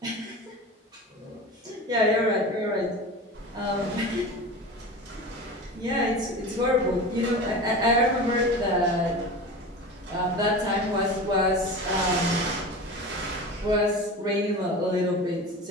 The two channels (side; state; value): both; normal; correlation 0.31